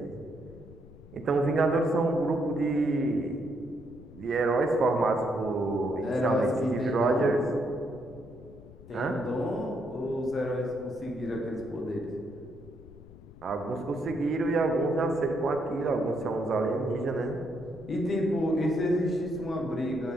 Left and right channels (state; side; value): noise; left; rumble, 19 dB below the sound